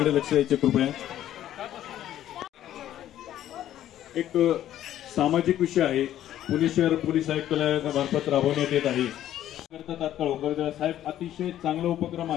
लक्ष द्यायचे कृपया. एक सामाजिक विषय आहे. पुणे शहर पोलीस आयुक्तालयामार्फत राबवण्यात येत आहे. तात्काळ होकर साहेब, अतिशय चांगला उपक्रम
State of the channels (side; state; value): right; quieter; 12.1 dB